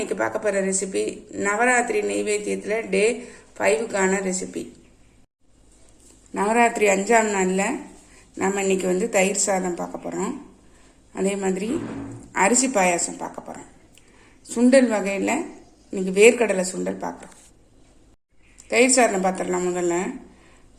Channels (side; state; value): both; identical; correlation 1.00